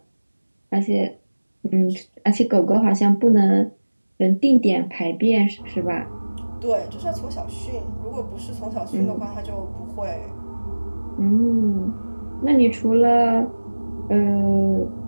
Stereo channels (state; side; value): inverted; both; correlation -1.00